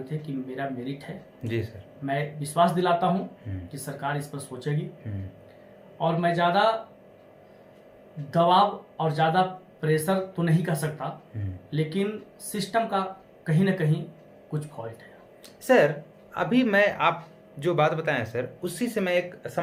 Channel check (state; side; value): identical; both; correlation 1.00